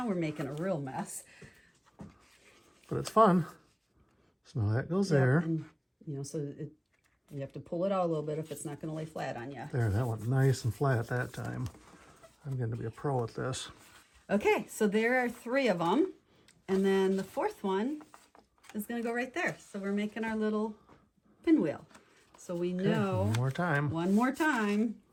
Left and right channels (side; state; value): both; identical; correlation 1.00